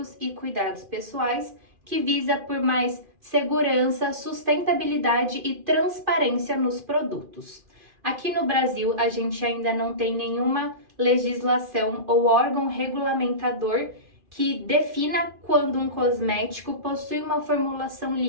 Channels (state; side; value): late; left; 2.5 ms